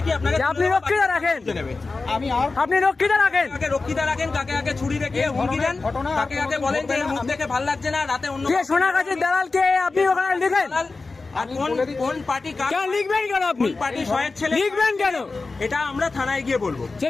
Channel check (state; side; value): quieter; right; 3.8 dB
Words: আপনাকে আপনি রক্ষিতা রাখেন, আপনি রক্ষিতা রাখেন, কাকে রক্ষিতা রাখেন, কাকে কাকে ছুরি রেখে হুমকি দেন, কাকে কাকে বলেন যে মুখ দেখে ভালো লাগছে না, রাতে অন্য কে সোনাগাছির দালাল কে আপনি ওখানে লিখেন? আর কোন পার্টি কেন লিখবেন কেন আপনি? পার্টি শয়ের ছেলে লিখবেন কেন? এটা আমরা থানায় গিয়ে বলবো। সে